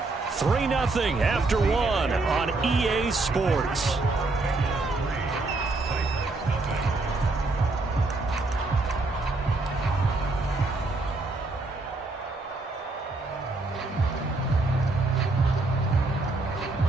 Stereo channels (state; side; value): quieter; left; 3.3 dB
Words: 3-0 after 1 on EA Sports. Here